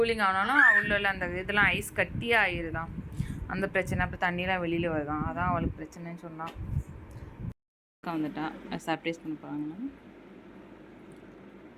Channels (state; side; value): identical; both; correlation 1.00